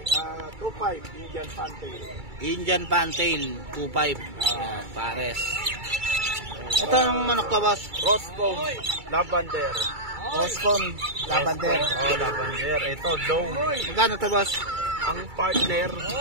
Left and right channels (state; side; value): late; left; 2.3 ms